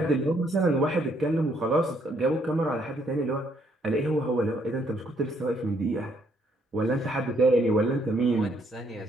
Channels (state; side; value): normal; both; correlation 0.70